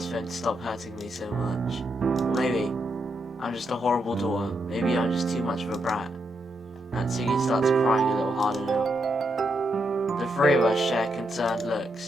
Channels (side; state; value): both; normal; correlation 0.81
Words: is for him to stop hurting me so much. Maybe I'm just a horrible daughter. Maybe I'm just too much of a brat. Natsuki starts crying a little harder now. The three of us share concerned